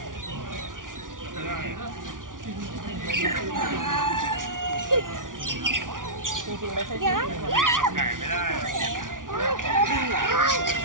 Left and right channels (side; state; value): left; late; 0.88 ms